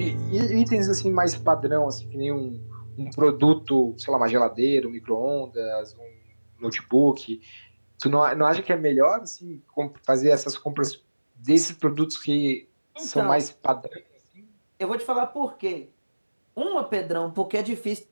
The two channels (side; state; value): both; inverted; correlation -1.00